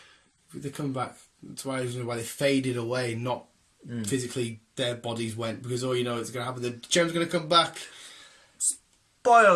They're coming back. That's why they faded away, not physically their bodies went, because all you know it's going to happen. The gem's going to come back. Spoiler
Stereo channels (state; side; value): identical; both; correlation 1.00